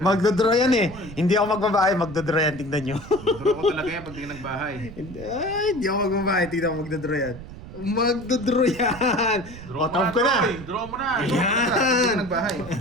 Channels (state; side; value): noise; right; rumble, 14 dB below the sound